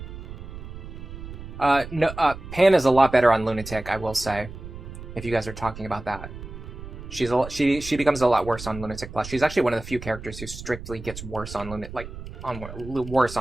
Pan is a lot better on Lunatic, I will say, if you guys are talking about that. She becomes a lot worse on Lunatic Plus. She's actually one of the few characters who strictly gets worse on worse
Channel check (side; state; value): right; noise; rumble, 12 dB below the sound